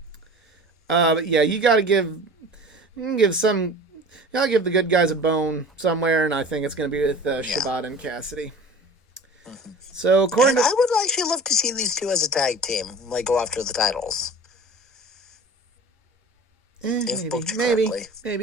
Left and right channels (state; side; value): normal; both; correlation 0.40